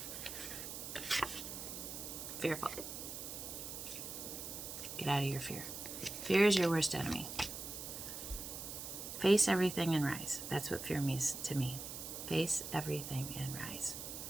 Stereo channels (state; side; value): noise; right; hiss, 7 dB below the sound